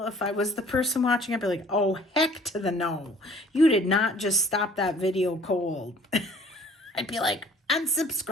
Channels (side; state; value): both; normal; correlation 0.53